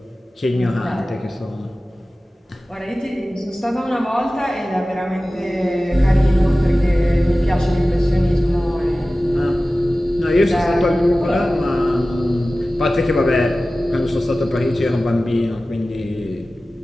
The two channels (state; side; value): normal; both; correlation 0.96